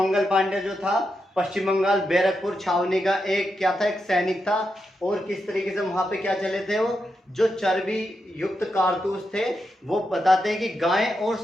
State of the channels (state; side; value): normal; both; correlation 0.86